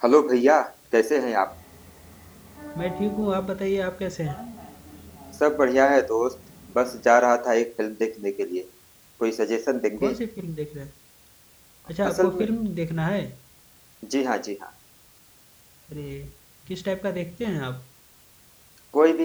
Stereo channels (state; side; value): identical; both; correlation 1.00